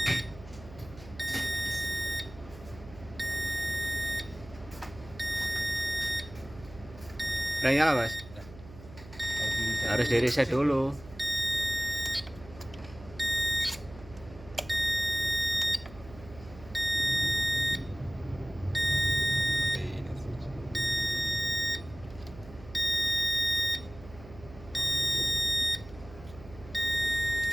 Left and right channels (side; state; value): right; noise; hum, 18 dB below the sound